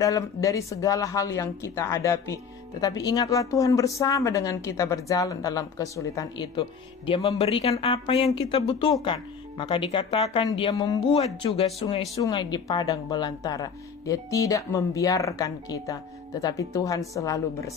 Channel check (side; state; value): right; quieter; 6.2 dB